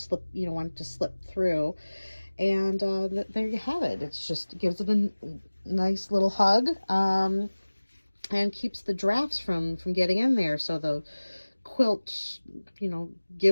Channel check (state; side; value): inverted; both; correlation -1.00